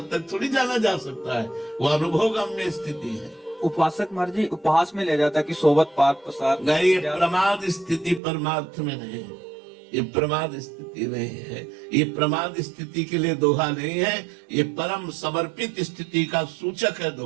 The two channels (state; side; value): drops out; left; at 8.2 s